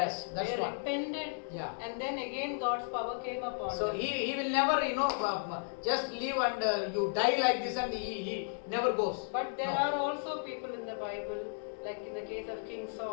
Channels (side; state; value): right; silent; digital silence